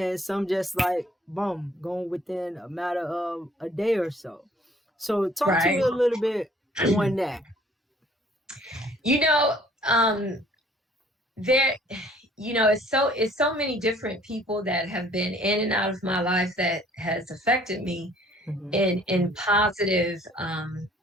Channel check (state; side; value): normal; both; correlation 0.57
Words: some just like boom, going within a matter of a day or so. So talk to me Right. a little bit on that. You know, there, it's so many different people that have been in and out of my life that has affected me Mm-hmm. in positive